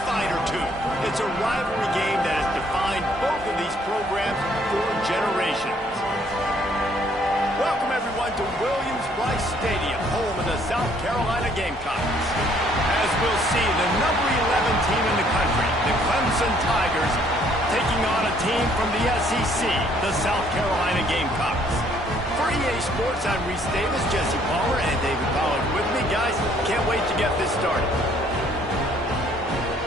fight or two. It's a rivalry game that has defined both of these programs for generations. Welcome, everyone, to Williams-Brice Stadium, home of the South Carolina Gamecocks. As we'll see, the number 11 team in the country, the Clemson Tigers, taking on a team from the SEC, the South Carolina Gamecocks. For EA Sports, I'm Reese Davis, Jesse Palmer, and David Pollard with me. Guys, can't wait to get this started.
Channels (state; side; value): normal; both; correlation 0.63